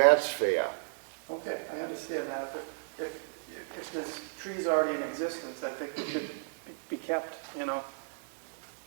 fair. Okay, I understand that, but if there's trees already in existence, I think they should be kept,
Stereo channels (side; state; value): left; silent; digital silence